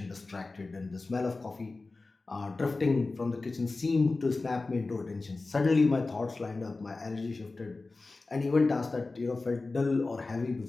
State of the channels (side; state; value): right; quieter; 3.5 dB